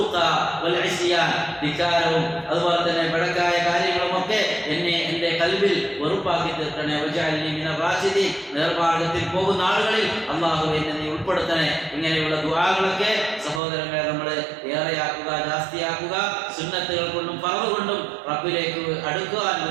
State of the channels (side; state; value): left; drops out; at 13.6 s